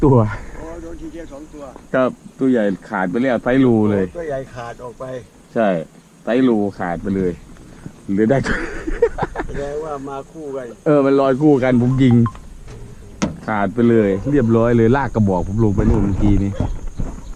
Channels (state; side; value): identical; both; correlation 1.00